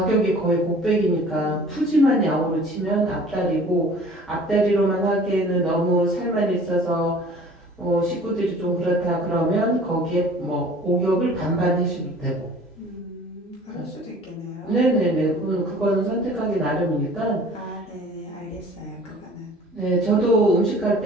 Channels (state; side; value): normal; both; correlation 0.48